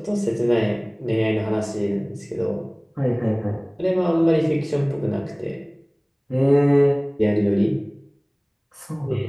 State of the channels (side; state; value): both; identical; correlation 1.00